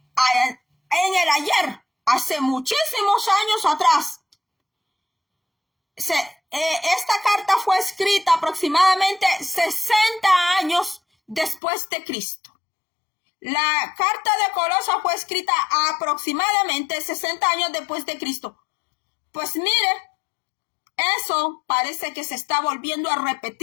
en el ayer, hace muchísimos años atrás, esta carta fue escrita aproximadamente 60 años después de Cristo. La carta de Colosas fue escrita aproximadamente 60 años después de Cristo. Pues mire, eso parece que se está volviendo a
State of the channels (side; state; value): right; drops out; at 11.6 s